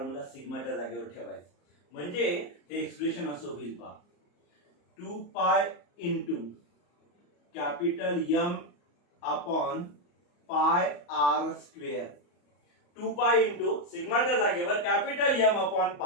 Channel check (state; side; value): late; right; 34 ms